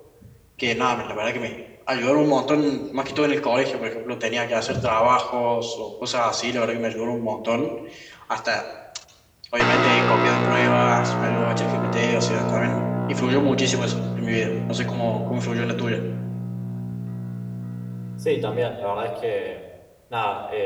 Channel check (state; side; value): identical; both; correlation 1.00